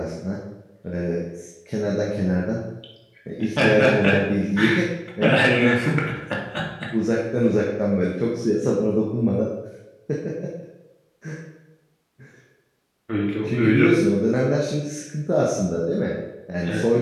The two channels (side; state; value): both; identical; correlation 1.00